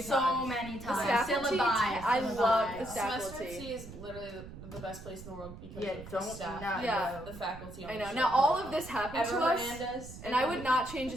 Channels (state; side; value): noise; right; rumble, 14 dB below the sound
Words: so many The times. faculty, I love the Semester faculty. C is literally the best place in the world because Yeah, of the don't staff, not Yeah. the faculty. On I the know. ship. Now all of this happened Ever to us, Hernandez, and I would not change a